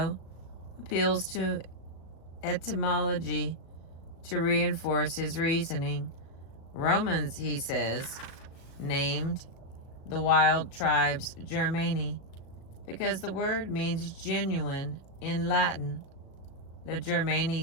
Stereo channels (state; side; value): late; right; 36 ms